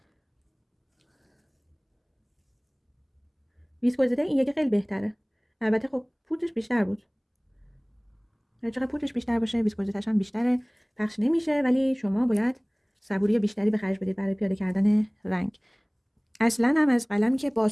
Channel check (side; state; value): both; identical; correlation 1.00